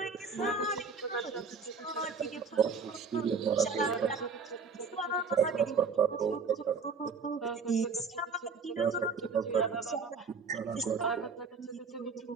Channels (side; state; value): left; quieter; 5.1 dB